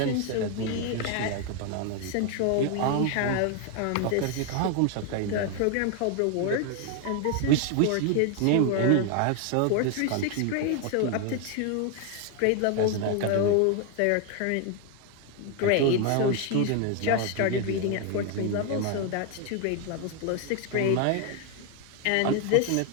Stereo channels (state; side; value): different; both; correlation 0.01